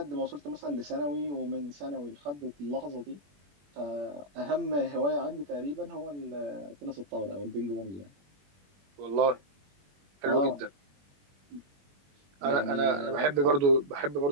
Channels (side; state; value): left; late; 21 ms